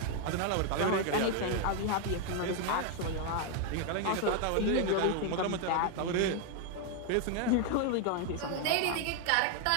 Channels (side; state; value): both; different; correlation 0.01